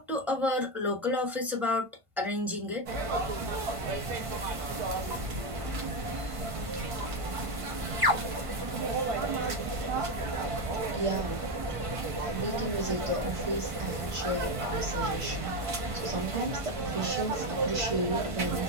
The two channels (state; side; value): late; left; 1.5 ms